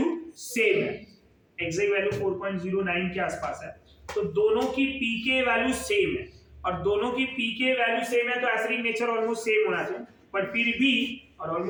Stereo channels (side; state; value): both; identical; correlation 1.00